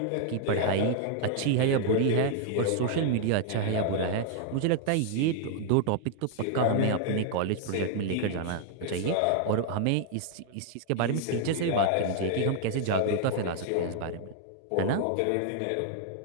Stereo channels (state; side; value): different; both; correlation 0.00